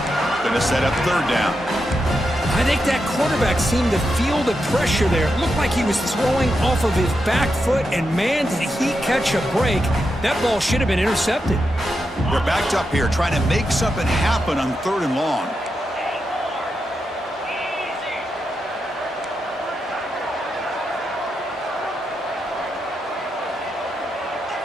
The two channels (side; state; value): both; normal; correlation 0.86